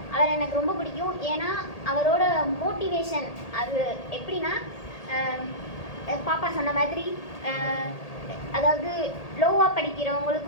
அவர் எனக்கு ரொம்ப பிடிக்கும். ஏன்னா அவரோட மோட்டிவேஷன் அது எப்படின்னா, பாப்பா சொன்ன மாதிரி அதாவது லோவாக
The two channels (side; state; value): right; late; 1.8 ms